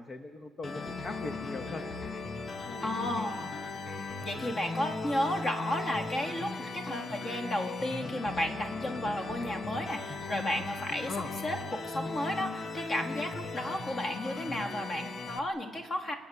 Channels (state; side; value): normal; both; correlation 0.83